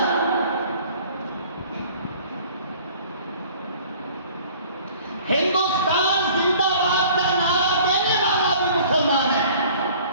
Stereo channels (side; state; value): both; inverted; correlation -0.50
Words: ہندوستان زندہ باد کا نعرہ دینے والا بھی مسلمان ہے،